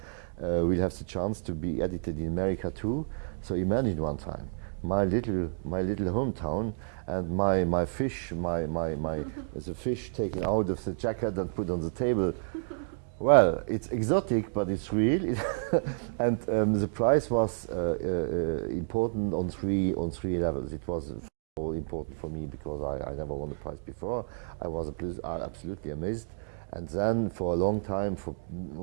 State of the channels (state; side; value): silent; left; digital silence